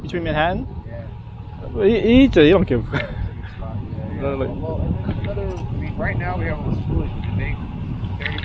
Manhattan. Yeah. He eats it. He don't give. Yeah. Well, right now we have all the schools with the big 30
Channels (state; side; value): identical; both; correlation 1.00